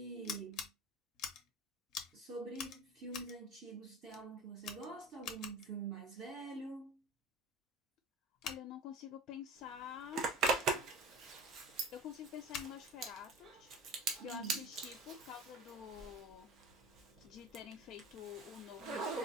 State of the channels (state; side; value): normal; both; correlation 0.37